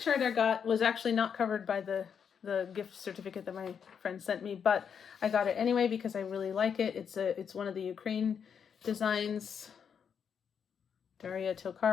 I got was actually not covered by the gift certificate that my friend sent me, but I got it anyway because I really like it. It's one of the Ukraine designs, Daria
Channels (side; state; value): right; quieter; 7.3 dB